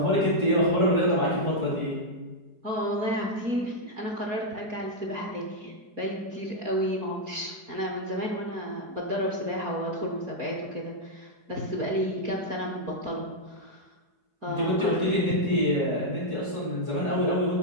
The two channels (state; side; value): late; left; 4.7 ms